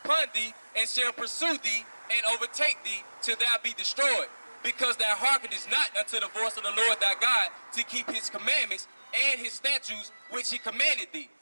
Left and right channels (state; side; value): inverted; both; correlation -1.00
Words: thee, and shall pursue thee, and overtake thee, till thou be destroyed, because thou hearkenest not unto the voice of the Lord thy God, to keep his commandments and his statutes, which he commanded thee.